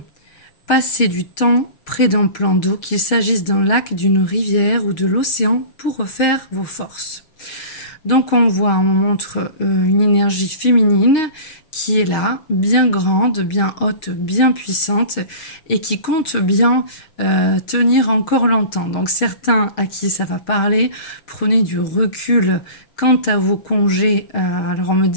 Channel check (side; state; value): right; late; 6.5 ms